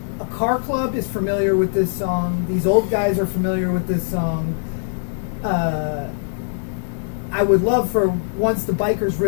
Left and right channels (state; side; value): silent; right; digital silence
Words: a car club is familiar with this song. These old guys are familiar with this song. I would love for once the bikers